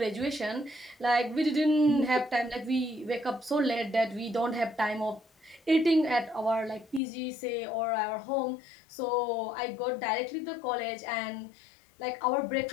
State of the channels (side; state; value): right; drops out; at 7.0 s